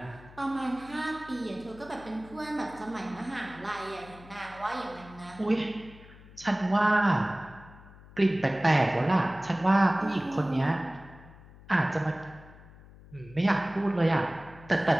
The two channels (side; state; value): left; noise; hum, 21 dB below the sound